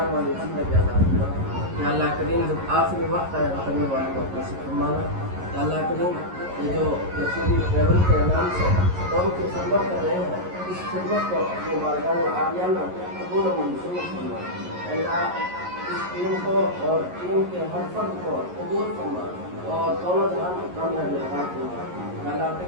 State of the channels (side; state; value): left; late; 11 ms